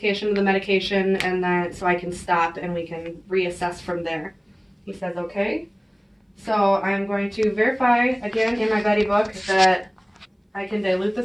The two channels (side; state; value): both; identical; correlation 1.00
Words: of the medication, and then so I can stop and we can reassess from there. He says okay. So I'm going to verify again in my buddy book that I can dilute